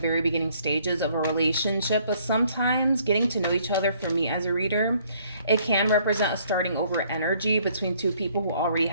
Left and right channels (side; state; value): both; inverted; correlation -0.63